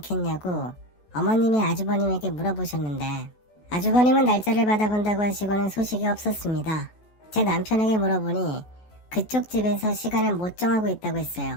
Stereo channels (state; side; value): late; right; 14 ms